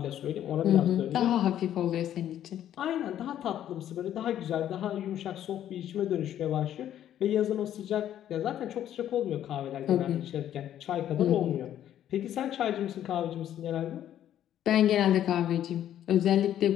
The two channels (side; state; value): right; quieter; 11.2 dB